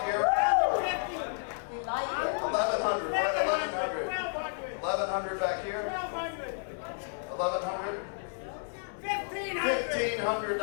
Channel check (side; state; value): right; silent; digital silence